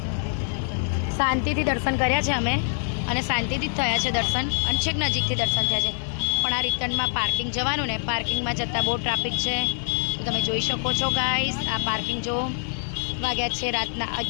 શાંતિથી દર્શન કર્યા છે અમે અને શાંતિથી જ થયા છે દર્શન, અને છેક નજીકથી દર્શન થયા છે. પણ આ રિટર્નમાં પાર્કિંગ જવાનું ને, પાર્કિંગમાં જતાં બહુ ટ્રાફિક છે. તો તમે જોઈ શકો છો ગાઈસ, આ પાર્કિંગ જો. વાગ્યા છે રાતના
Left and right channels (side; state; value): right; silent; 62 dB below the other